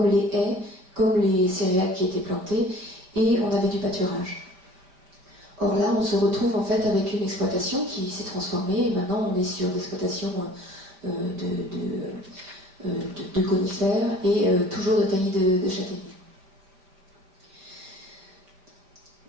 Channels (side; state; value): left; late; 5.2 ms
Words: les haies, comme les céréales qui étaient plantées, et on avait du pâturage. Or là, on se retrouve en fait avec une exploitation qui s'est transformée, et maintenant on est sur l'exploitation de conifères et toujours de taillis de châtaigniers.